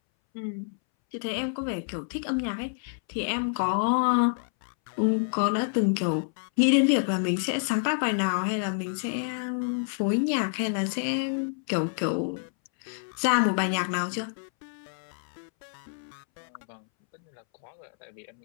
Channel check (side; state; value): right; silent; 59 dB below the other